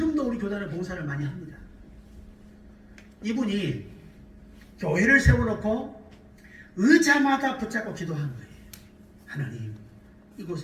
우리 교단에 봉사를 많이 합니다. 이분이 교회를 세워놓고 의자마다 붙잡고 기도한 거예요. 하나님,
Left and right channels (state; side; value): identical; both; correlation 1.00